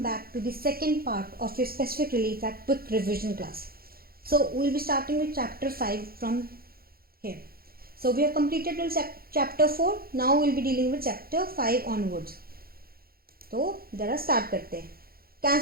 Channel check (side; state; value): left; late; 0.44 ms